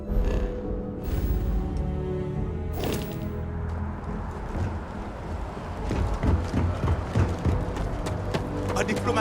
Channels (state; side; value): identical; both; correlation 1.00